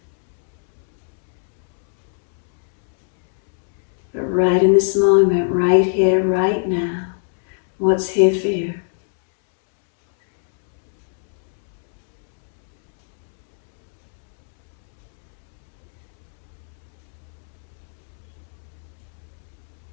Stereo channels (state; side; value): silent; right; 66 dB below the other